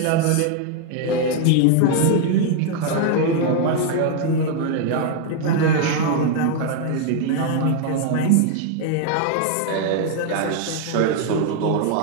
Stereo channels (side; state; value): both; different; correlation 0.00